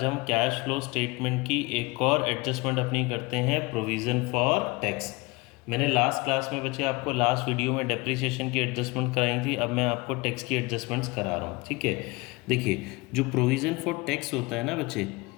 हम कैश फ्लो स्टेटमेंट की एक और एडजस्टमेंट अपनी करते हैं, प्रोविज़न फॉर टैक्स। मैंने लास्ट क्लास में बच्चे आपको लास्ट वीडियो में डेप्रिसिएशन की एडजस्टमेंट कराई थी, अब मैं आपको टैक्स की एडजस्टमेंट्स करा रहा हूँ। ठीक है, देखिए जो प्रोविज़न फॉर टैक्स होता है ना बच्चे,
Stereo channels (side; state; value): right; quieter; 24.8 dB